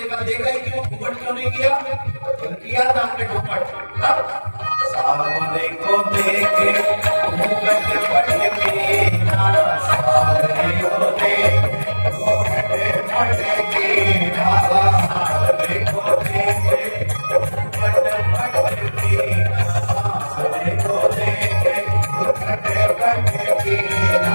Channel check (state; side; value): inverted; both; correlation -1.00